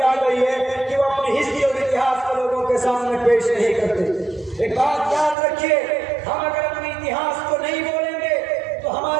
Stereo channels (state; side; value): drops out; left; at 5.4 s